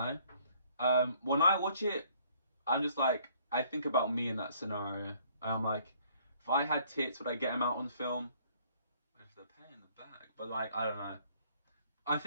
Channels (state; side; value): inverted; both; correlation -0.62